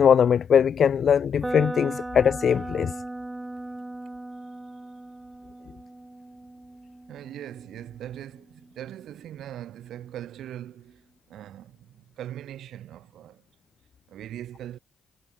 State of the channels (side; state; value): right; quieter; 6.3 dB